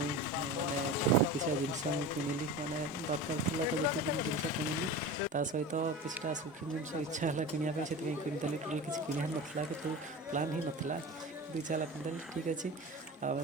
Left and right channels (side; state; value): both; normal; correlation 0.31